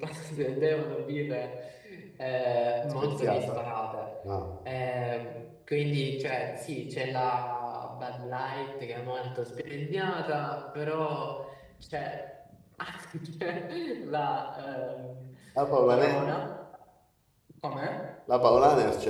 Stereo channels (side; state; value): both; identical; correlation 1.00